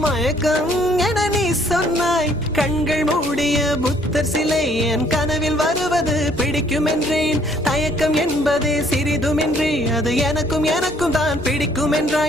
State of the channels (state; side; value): normal; both; correlation 0.62